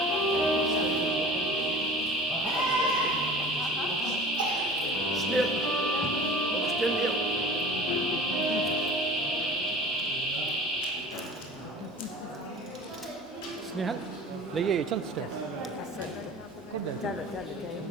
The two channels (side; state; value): both; normal; correlation 0.40